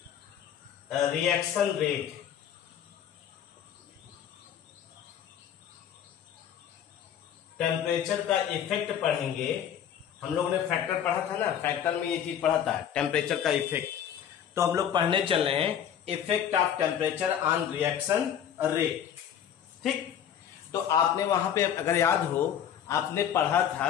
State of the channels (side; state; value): right; quieter; 9.3 dB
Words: reaction rate. Temperature का इफेक्ट पढ़ेंगे। हम लोगों ने फैक्टर पढ़ा था ना, फैक्टर में ये चीज पढ़ा था टेम्परेचर का इफेक्ट। तो हम लोग पढ़ने चल रहे हैं effect of temperature on reaction rate. ठीक, तो आपने वहां पे अगर याद हो, आपने पढ़ा था